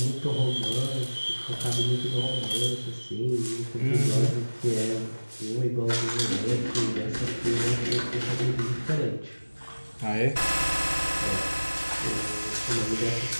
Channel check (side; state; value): both; inverted; correlation -1.00